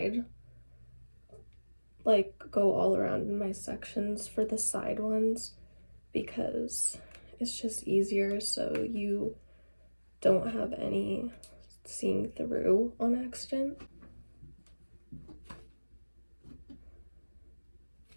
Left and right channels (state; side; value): inverted; both; correlation -1.00